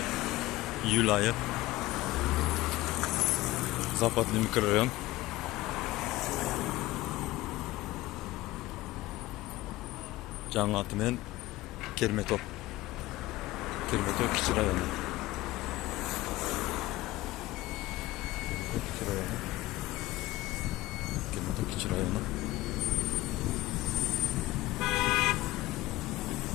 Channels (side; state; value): right; quieter; 17.9 dB